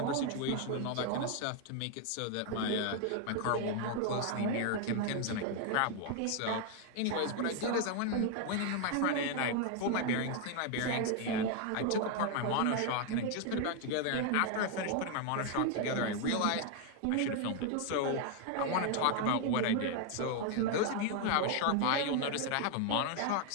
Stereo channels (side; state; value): both; different; correlation 0.01